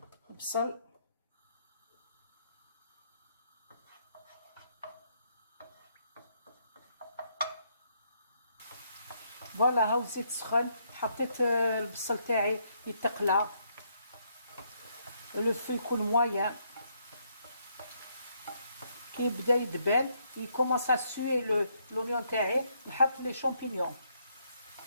البصل فوالا هاو الزيت سخن. حطيت البصل تاعي يتقلى، لو فو يكون مويان. كي يبدا يدبل يكومونس ا سوي لونيون تاعي، نحط لي شامبينيون.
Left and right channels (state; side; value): inverted; both; correlation -0.73